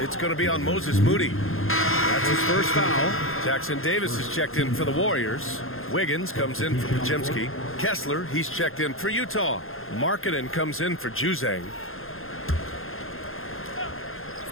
It's going to be on Moses Moody. That's his first foul. Jackson Davis is checked in for the Warriors. Wiggins comes in for Podziemski. Kessler, he's checked in for Utah. Markkanen comes in for Juzang.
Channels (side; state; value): right; late; 0.60 ms